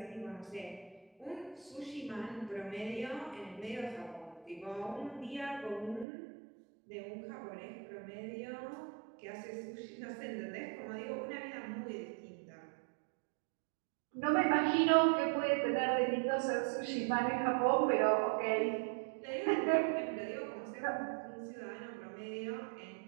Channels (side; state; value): left; drops out; at 6.1 s